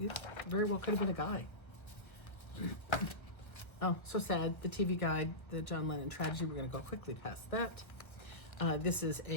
very well could have been a guy. Oh, so sad. The TV guide, the John Lennon tragedy. We're going to go quickly past that. This is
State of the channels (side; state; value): right; late; 1.1 ms